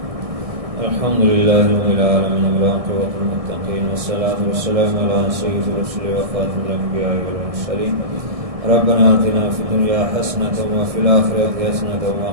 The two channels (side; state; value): left; late; 1.6 ms